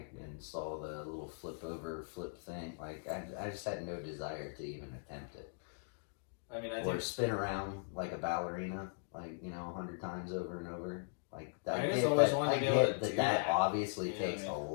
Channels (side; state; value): right; silent; digital silence